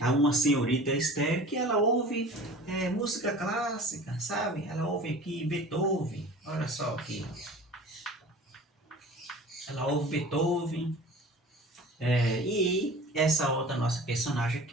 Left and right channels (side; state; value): both; normal; correlation 0.41